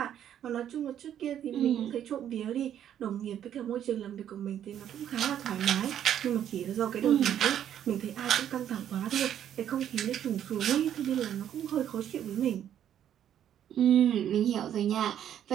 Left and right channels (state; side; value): quieter; left; 10.2 dB